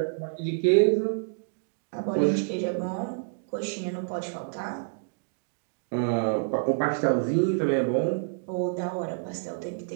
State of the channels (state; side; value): silent; left; digital silence